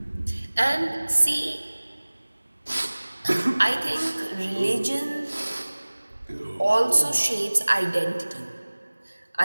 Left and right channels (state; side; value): inverted; both; correlation -1.00